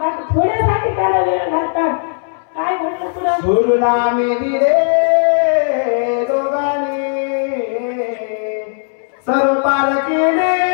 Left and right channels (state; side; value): silent; right; 66 dB below the other